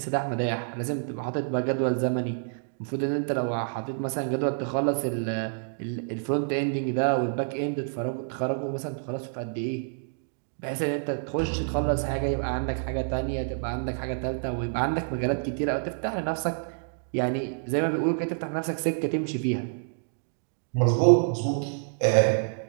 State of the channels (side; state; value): left; silent; digital silence